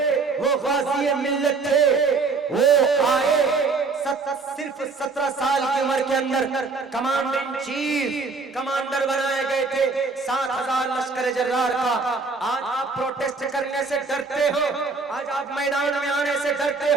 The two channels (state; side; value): quieter; left; 4.3 dB